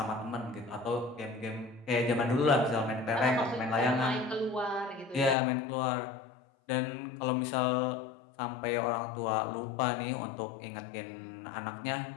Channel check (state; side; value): drops out; right; at 5.4 s